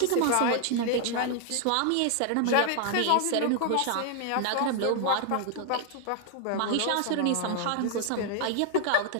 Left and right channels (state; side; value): different; both; correlation 0.00